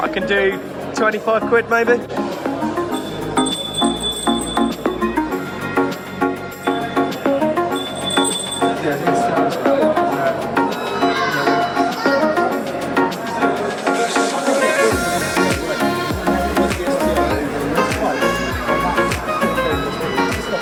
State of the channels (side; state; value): both; identical; correlation 1.00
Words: I can do 25 quid maybe.